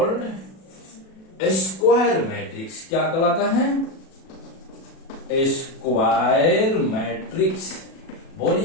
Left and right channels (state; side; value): late; right; 37 ms